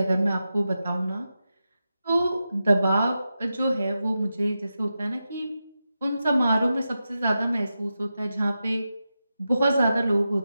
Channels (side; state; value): both; inverted; correlation -0.90